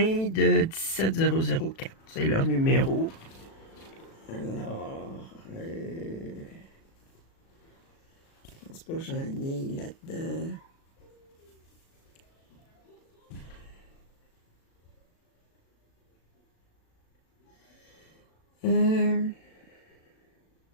de 17004. C'est leur numéro. Alors, je pense pas que j'en ai là-dedans.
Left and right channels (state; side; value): late; right; 36 ms